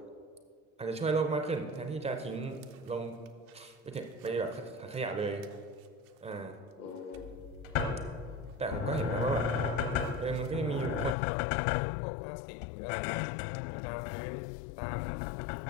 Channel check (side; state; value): right; drops out; at 11.2 s